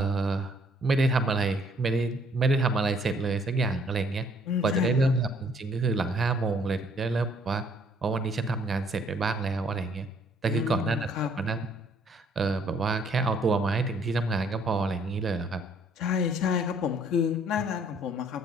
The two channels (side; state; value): both; normal; correlation 0.63